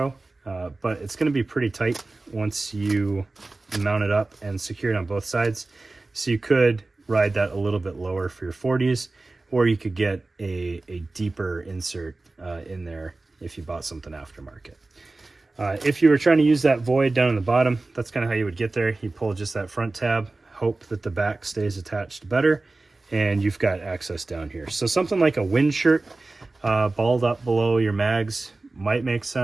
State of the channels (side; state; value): left; quieter; 3.2 dB